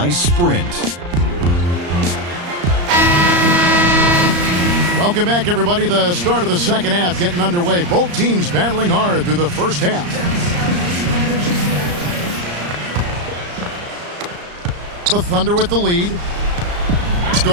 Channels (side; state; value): left; late; 34 ms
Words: Sprint. Welcome back, everybody. The start of the second half getting underway. Both teams battling hard through the first half. The Thunder with the lead. Let's